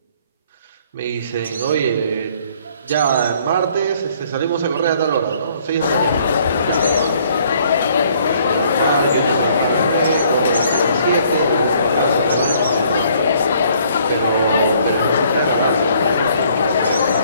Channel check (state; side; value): inverted; both; correlation -0.62